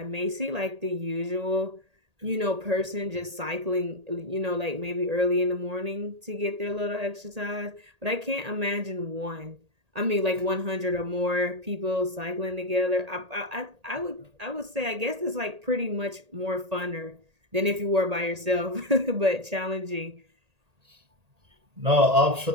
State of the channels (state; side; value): late; left; 1.8 ms